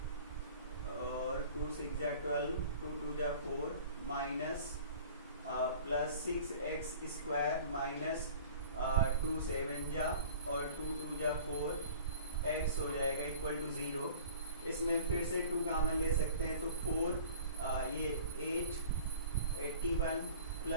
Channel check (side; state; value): both; inverted; correlation -0.45